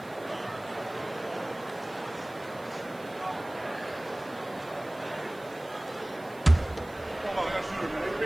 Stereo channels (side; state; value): right; noise; hiss, 24 dB below the sound